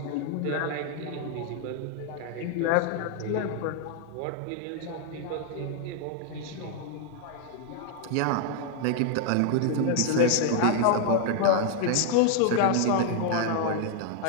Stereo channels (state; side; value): different; both; correlation 0.00